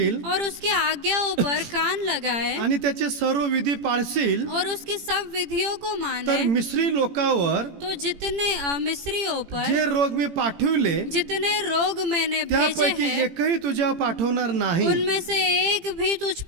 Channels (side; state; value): left; late; 18 ms